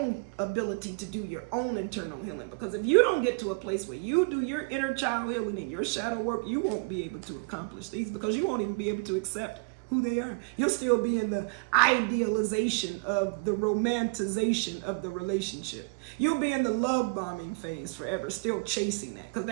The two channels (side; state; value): left; quieter; 33.0 dB